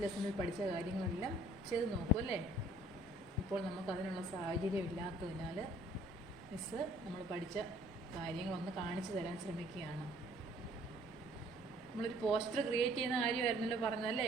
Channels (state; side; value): normal; both; correlation 0.57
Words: ലെസണിൽ പഠിച്ച കാര്യങ്ങളെല്ലാം ചെയ്ത് നോക്കും അല്ലേ? ഇപ്പോൾ നമുക്കതിനുള്ള സാഹചര്യം ഇല്ലാത്തതിനാൽ മിസ്സ് നമ്മൾ പഠിച്ച കാര്യങ്ങളൊന്ന് കാണിച്ചു തരാൻ ശ്രമിക്കുകയാണ്. നമ്മളൊരു പോസ്റ്റർ ക്രിയേറ്റ് ചെയ്യുന്ന കാര്യമായിരുന്നല്ലോ പറഞ്ഞല്ലേ.